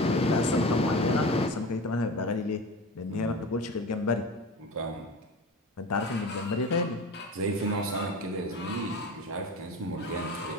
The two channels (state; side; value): normal; both; correlation 0.32